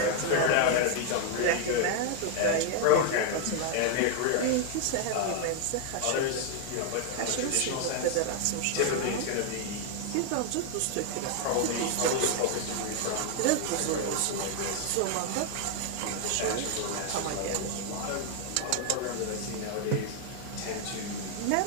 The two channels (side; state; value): both; different; correlation 0.00